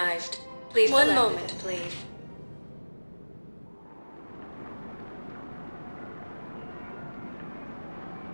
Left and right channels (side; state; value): both; inverted; correlation -1.00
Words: Please one moment, please.